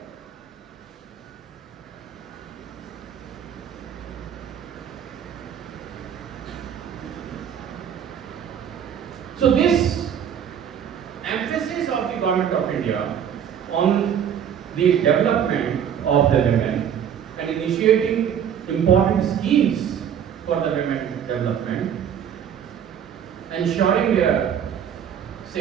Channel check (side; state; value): left; quieter; 8.8 dB